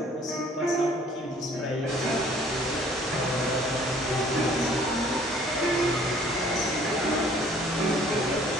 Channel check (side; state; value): both; normal; correlation 0.56